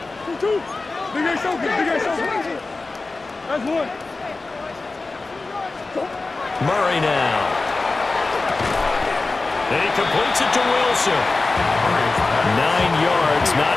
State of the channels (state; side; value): quieter; right; 3.5 dB